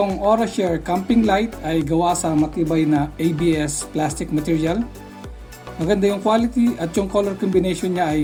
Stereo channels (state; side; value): identical; both; correlation 1.00